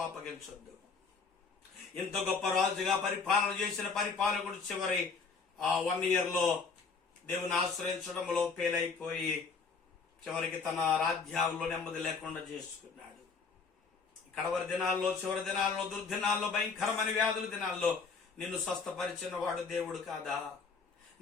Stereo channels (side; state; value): right; quieter; 5.0 dB